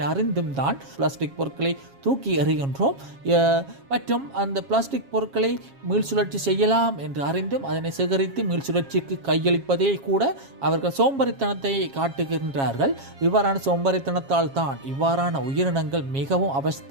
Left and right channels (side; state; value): left; late; 7.3 ms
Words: அறிந்தும் தான் பிளாஸ்டிக் பொருட்களை தூக்கி எறிகின்றோம். மற்றும் அந்த பிளாஸ்டிக் பொருட்களை மீள்சுழற்சி செய்யலாம் என்று அறிந்தும் அதனை சேகரித்து மீள்சுழற்சிக்கு கையளிப்பதே கூட அவர்கள் சோம்பரித்தனத்தை காட்டுகின்றார்கள். இவ்வாறான சோம்பரித்தனத்தால் தான் இவ்வாறான உயிரினங்கள் மிகவும்